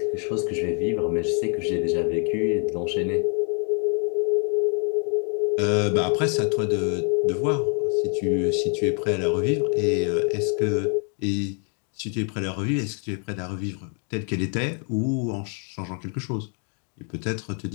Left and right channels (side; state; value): right; quieter; 38.3 dB